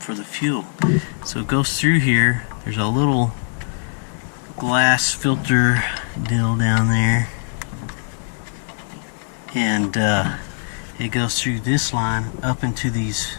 for the fuel. So it goes through here. There's a little glass filter deal down there, and it goes through this line up into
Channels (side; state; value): right; silent; digital silence